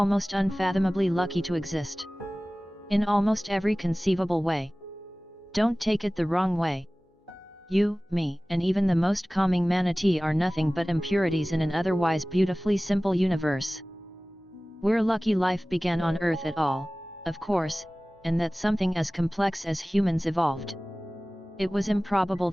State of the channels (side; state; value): both; normal; correlation 0.98